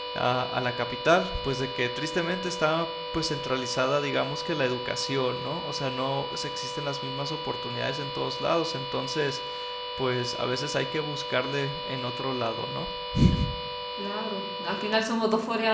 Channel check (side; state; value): both; identical; correlation 1.00